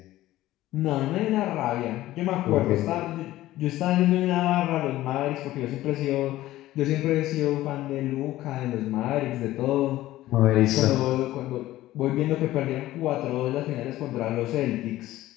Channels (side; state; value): right; quieter; 15.5 dB